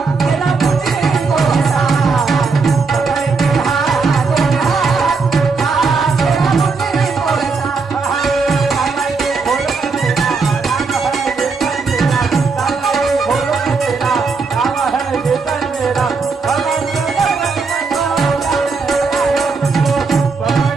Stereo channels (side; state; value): left; quieter; 4.6 dB